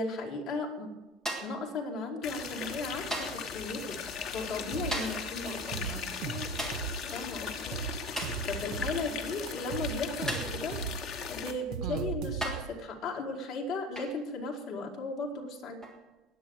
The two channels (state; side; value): normal; both; correlation 0.36